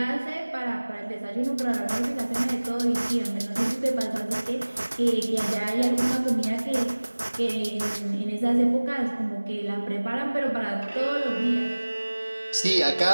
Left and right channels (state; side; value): inverted; both; correlation -1.00